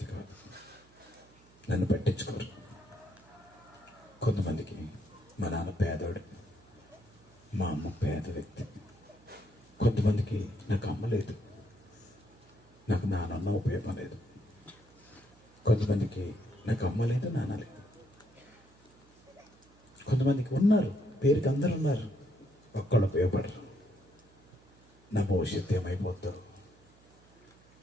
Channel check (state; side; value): noise; right; hum, 28 dB below the sound